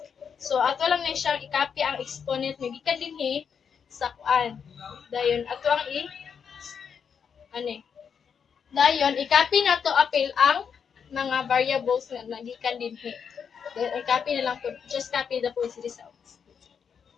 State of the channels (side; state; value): right; quieter; 6.9 dB